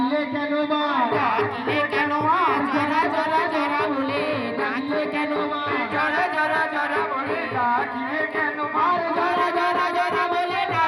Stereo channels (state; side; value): identical; both; correlation 1.00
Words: কেন মা? ডাকলে কেন মা? জরা জরা জরা বলে ডাকলে কেন মা? জরা জরা জরা বলে ডাকলে কেন মা? জরা জরা জরা বলে